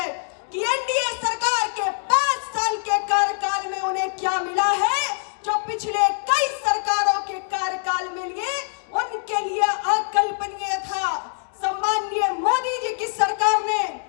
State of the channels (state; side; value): silent; right; digital silence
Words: कि एनडीए सरकार के 5 साल के कार्यकाल में उन्हें क्या मिला है जो पिछले कई सरकारों के कार्यकाल में लिए उनके लिए अकल्पनीय था। सम्माननीय मोदी जी की सरकार ने